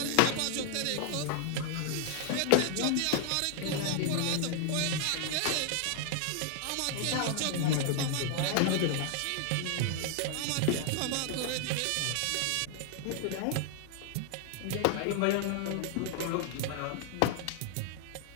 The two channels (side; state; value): both; different; correlation 0.00